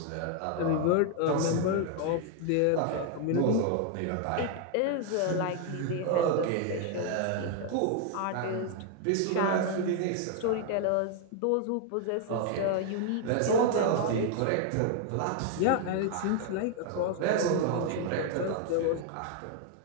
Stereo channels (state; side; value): different; both; correlation 0.00